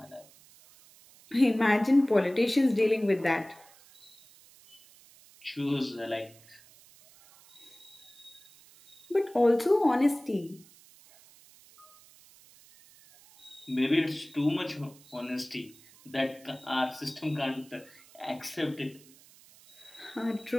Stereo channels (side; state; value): right; noise; hiss, 25 dB below the sound